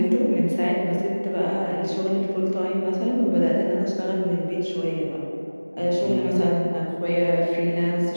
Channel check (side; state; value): both; inverted; correlation -1.00